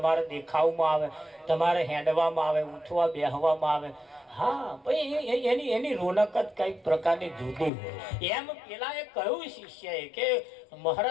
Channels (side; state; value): right; drops out; at 7.7 s